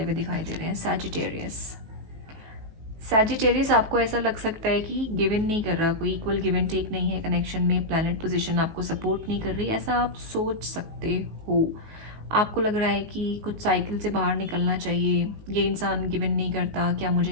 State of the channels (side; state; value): left; late; 18 ms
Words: हुए दिखाई दे रहे हैं। सैजिटेरियस, आपको ऐसा लग सकता है कि गिव इन नहीं कर रहा, कोई इक्वल गिव एंड टेक नहीं है कनेक्शन में, प्लैनेट पोजीशन आपको सपोर्ट नहीं कर रही, ऐसा आप सोच सकते हो। आपको लग रहा है कि कुछ साइकिल से बाहर निकलना चाहिए, ये इंसान गिव इन नहीं करता, क्या